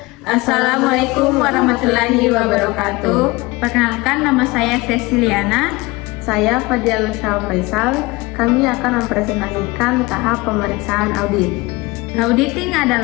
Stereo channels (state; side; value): quieter; right; 22.7 dB